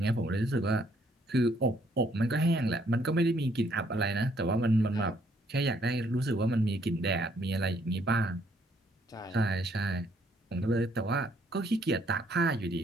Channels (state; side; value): normal; both; correlation 0.68